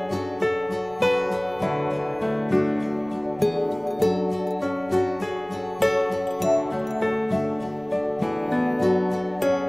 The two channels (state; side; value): noise; right; rumble, 27 dB below the sound